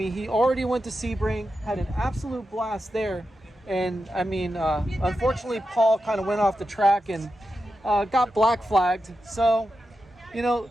he already went to Sebring, had an absolute blast there. And I mean, unfortunately, Paul kind of went off the track and got black flagged. So, you know,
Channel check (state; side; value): normal; both; correlation 0.89